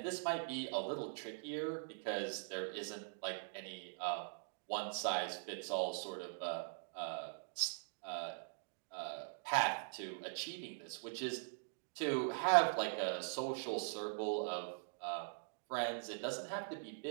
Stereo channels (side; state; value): left; silent; digital silence